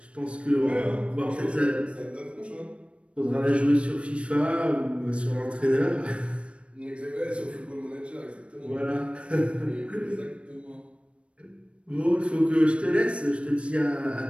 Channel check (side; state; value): left; late; 0.060 ms